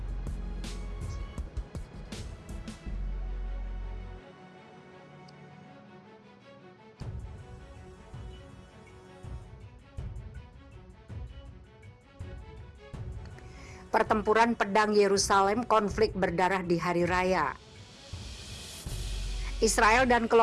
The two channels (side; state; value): both; identical; correlation 1.00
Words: Pertempuran pedang Yerusalem, konflik berdarah di hari raya. Israel dan